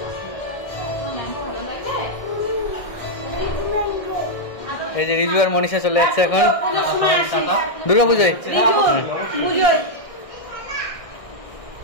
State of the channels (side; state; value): right; late; 1.6 ms